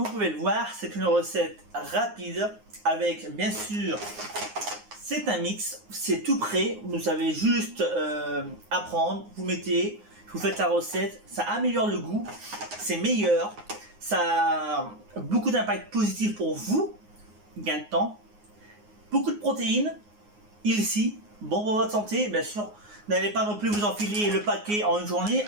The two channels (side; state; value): left; late; 9.6 ms